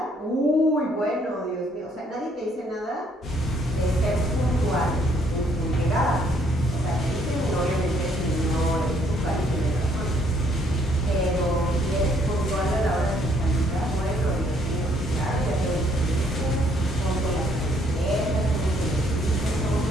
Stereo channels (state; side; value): normal; both; correlation 0.67